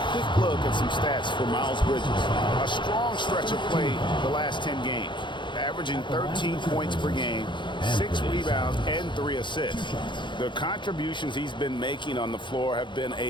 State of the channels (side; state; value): right; late; 0.23 ms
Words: quick look at some stats for Miles Bridges. A strong stretch of play the last 10 games. Averaging 13 points per game, 6 rebounds, and 3 assists. The contributions he's been making on the floor have been